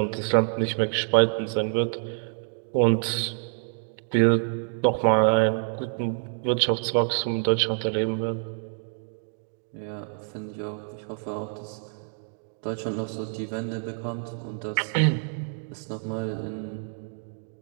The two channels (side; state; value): left; silent; digital silence